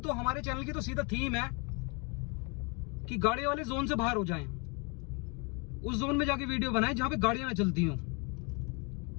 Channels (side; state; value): right; quieter; 32.3 dB